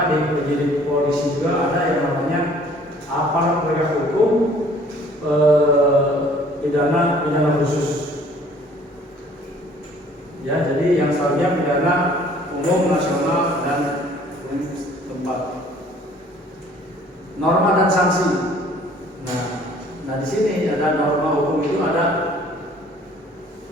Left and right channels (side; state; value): both; normal; correlation 0.55